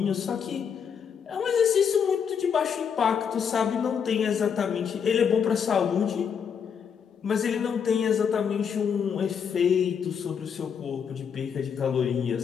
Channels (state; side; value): quieter; right; 7.2 dB